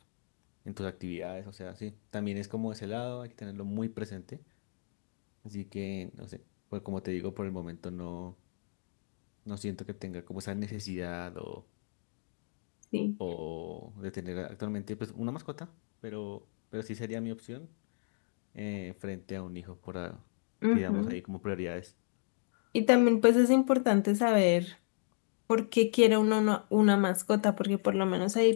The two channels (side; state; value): right; silent; digital silence